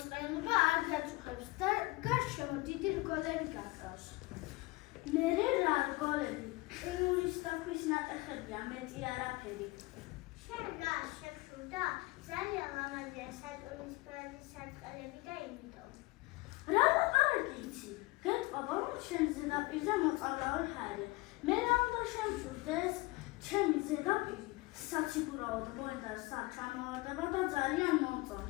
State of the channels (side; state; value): right; quieter; 22.3 dB